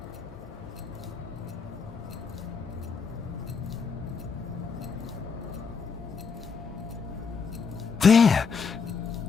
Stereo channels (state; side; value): quieter; right; 5.6 dB